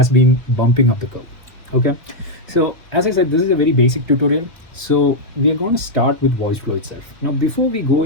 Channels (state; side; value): normal; both; correlation -0.02